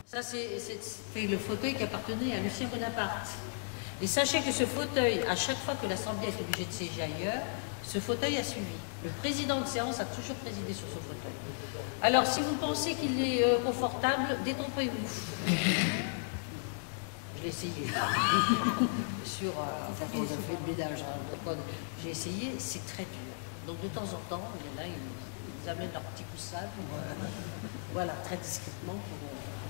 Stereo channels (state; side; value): silent; right; digital silence